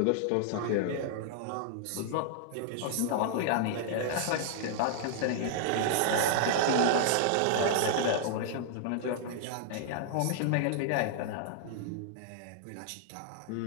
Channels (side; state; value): both; different; correlation -0.01